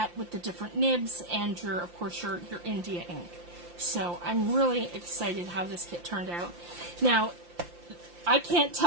with the different nibs and of course your India ink. So I'm really excited how this kit turned out. Now, I can't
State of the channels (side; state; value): left; late; 5.7 ms